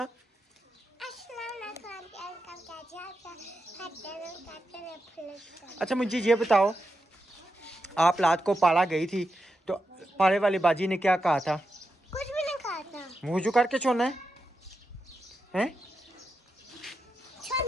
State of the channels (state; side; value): normal; both; correlation 0.88